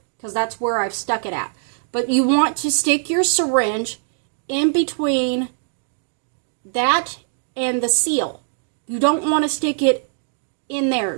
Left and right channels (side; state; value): left; silent; 59 dB below the other